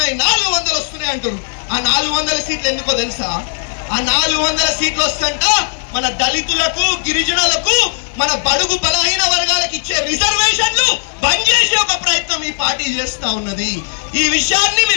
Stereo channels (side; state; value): right; silent; digital silence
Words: 400 వస్తున్నాయి అంటారు. ఆ 400 సీట్లు ఎందుకో తెలుసా? ఆ 400 సీట్లు వస్తుంట మన దళితులకు, గిరిజనులకు, మన బడుగు బలహీన వర్గాలకు ఇచ్చే రిజర్వేషన్లు బంద్ చేసే ఒక ప్రయత్నం ఈ పార్టీ చేస్తా ఉన్నది. ఈ విషయాన్ని